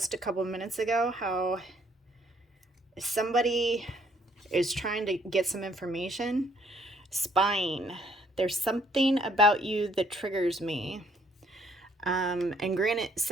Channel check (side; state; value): both; normal; correlation 0.65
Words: a couple minutes ago how somebody is trying to get some information? Spying. There's something about you that triggers me. And granted,